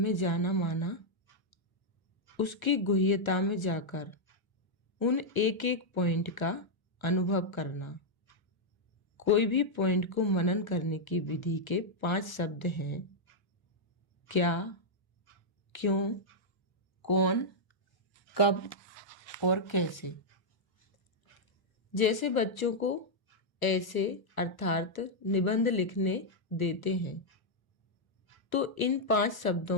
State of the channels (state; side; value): late; right; 1.1 ms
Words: जाना माना, उसकी गुह्यता में जाकर उन एक एक पॉइंट का अनुभव करना। कोई भी पॉइंट को मनन करने की विधि के 5 शब्द हैं: क्या, क्यों, कौन, कब और कैसे। जैसे बच्चों को ऐसे अर्थात निबंध लिखने देते हैं, तो इन 5